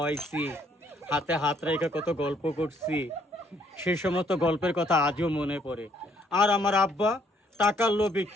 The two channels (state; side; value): normal; both; correlation 0.67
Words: হাতে হাত রেখে কত গল্প করছি। সেই সমস্ত গল্পের কথা আজও মনে পড়ে। আর আমার আব্বা টাকার লোভে